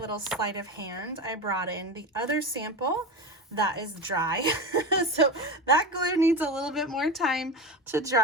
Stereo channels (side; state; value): both; normal; correlation 0.23